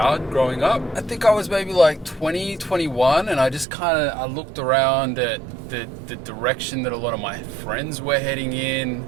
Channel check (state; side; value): drops out; left; at 3.7 s